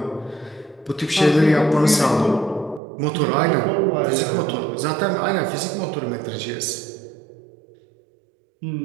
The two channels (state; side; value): drops out; left; at 2.8 s